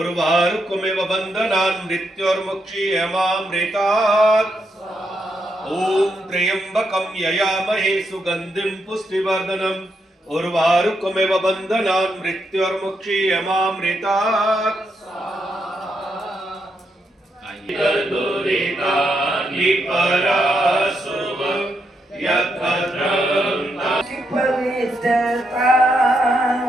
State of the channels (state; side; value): normal; both; correlation 0.81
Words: बन्धनान् मृत्युर्मुक्षीयमामृतात् ओम त्र्यंबकं ययामहे सुगंधिं पुष्टिवर्धनम् उर्वारुकमिव बन्धनान् मृत्युर्मुक्षीयमामृतात् पवित्रता